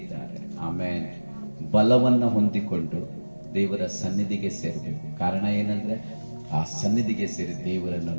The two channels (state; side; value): inverted; both; correlation -1.00